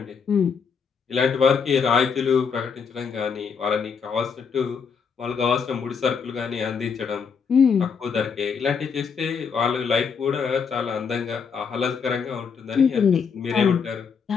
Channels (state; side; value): quieter; right; 6.1 dB